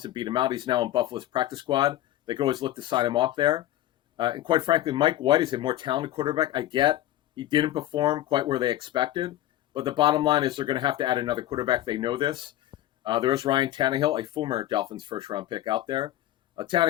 beat him out. He's now in Buffalo's practice squad. They could always look to sign him off there. And quite frankly, Mike White is a more talented quarterback. I get he didn't perform quite where they expected, but the bottom line is they're going to have to add another quarterback. They know this. There is Ryan Tannehill, a former Dolphins first-round pick out there.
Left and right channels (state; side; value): quieter; right; 13.9 dB